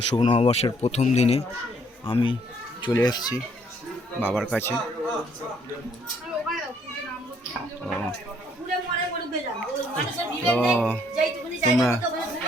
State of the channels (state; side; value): normal; both; correlation 0.66